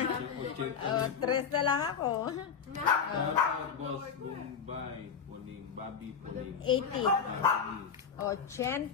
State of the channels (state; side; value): quieter; right; 6.6 dB